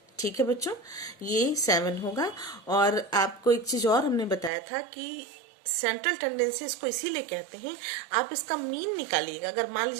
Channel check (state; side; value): drops out; left; at 4.5 s